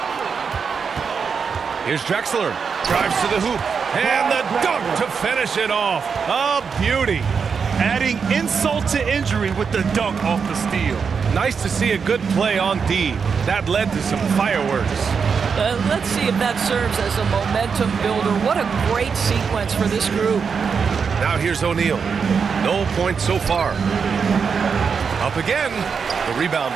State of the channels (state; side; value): quieter; left; 6.0 dB